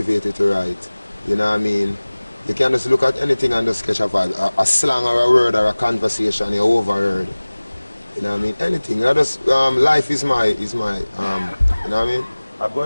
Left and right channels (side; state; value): both; inverted; correlation -1.00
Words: to write. You know what I mean? You can just look at anything and just catch a vibe. A slang or a word or a conversation you overheard. You know what I mean? Anything. You know, just, life is my, you know what I mean? I'm